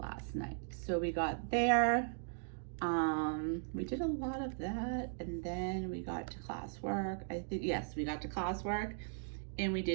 night. So we got there. We did a lot of that, and then we got to classwork. I think, yes, we got to classwork, and we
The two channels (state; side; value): silent; left; digital silence